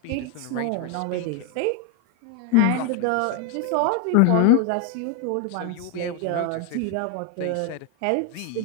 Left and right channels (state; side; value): different; both; correlation 0.01